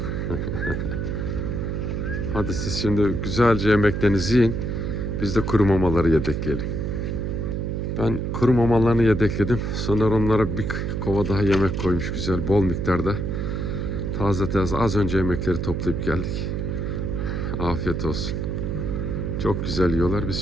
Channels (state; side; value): noise; right; hum, 2 dB below the sound